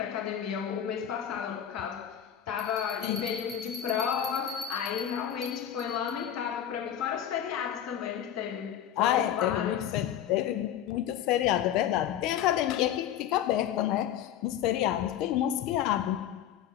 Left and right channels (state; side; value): quieter; right; 10.2 dB